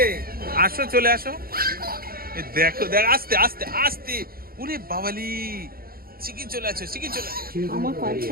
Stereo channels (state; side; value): late; left; 0.43 ms